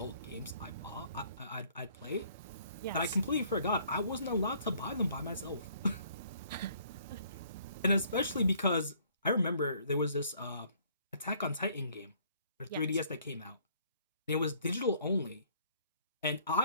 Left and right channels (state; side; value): inverted; both; correlation -0.61